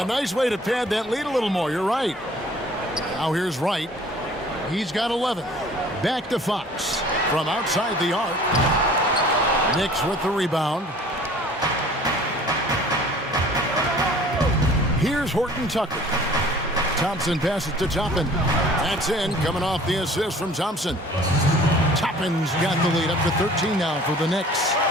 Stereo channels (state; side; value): normal; both; correlation 0.50